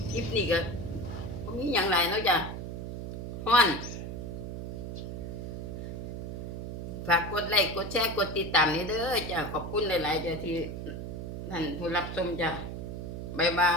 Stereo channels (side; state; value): right; noise; hum, 6 dB below the sound